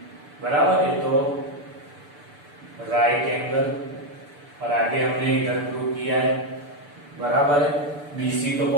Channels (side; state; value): left; late; 6.8 ms